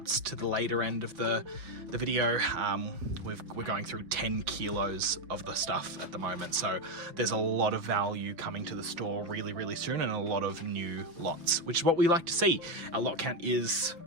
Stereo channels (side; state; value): left; late; 6.0 ms